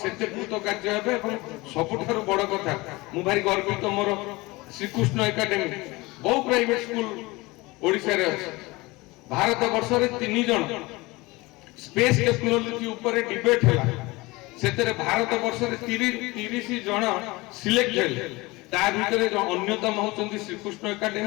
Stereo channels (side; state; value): right; quieter; 22.5 dB